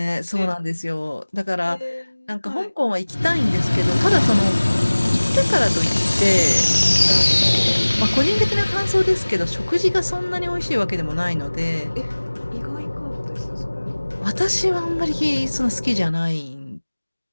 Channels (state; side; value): inverted; both; correlation -1.00